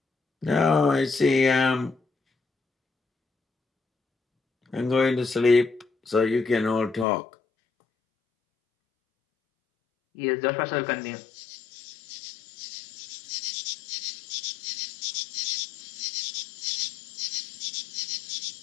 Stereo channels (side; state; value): right; drops out; at 7.1 s